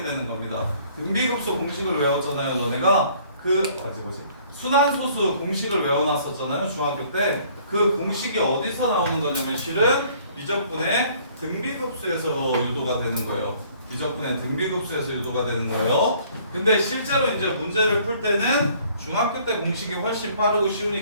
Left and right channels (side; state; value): both; inverted; correlation -0.58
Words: 되는 겁니다. 등비급수 공식을 외웠잖아요. 너네가 뭐지? 순환소수 공식을 외워놨었잖아요. 중학교 때. 그 공식이 어디서 나오는 거냐면 실은 미적분의 등비급수에서 유도가 되는 거예요. 미적분의 등비급수에서 유도가 되는 거예요. 근데 실제로 이제 문제를 풀 때는 중학교 때 공식이 훨씬 빠르고